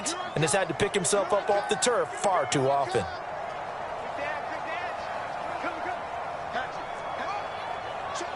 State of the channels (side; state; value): both; identical; correlation 1.00